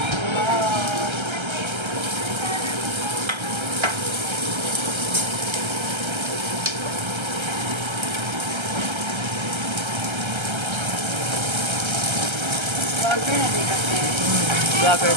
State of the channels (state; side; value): late; left; 1.3 ms